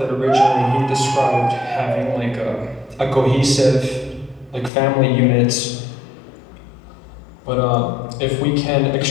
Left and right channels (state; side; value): drops out; right; at 4.7 s